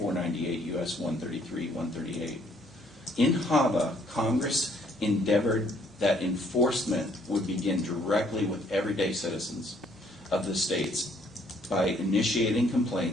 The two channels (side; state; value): both; normal; correlation 0.64